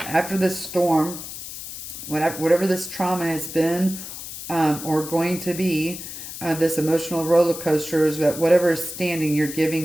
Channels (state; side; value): noise; left; hiss, 10 dB below the sound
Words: after this storm, whatever this trauma has been or going to be, this emotional roller coaster, is that whatever is standing, you're